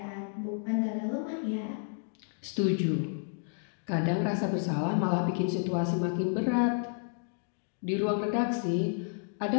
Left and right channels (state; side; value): silent; right; 57 dB below the other